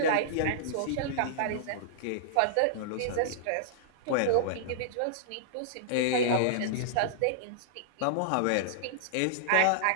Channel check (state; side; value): different; both; correlation -0.02